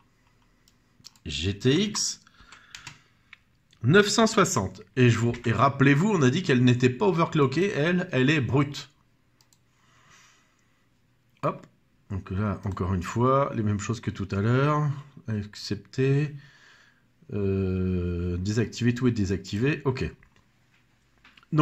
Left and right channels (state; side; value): identical; both; correlation 1.00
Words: GTX 960. Et rappelez-vous, on a dit qu'elle n'était pas overclockée. Elle est brute. Hop, donc là, encore une fois, les mêmes choses que tout à l'heure. Accepter. Désactiver, tout est désactivé. OK.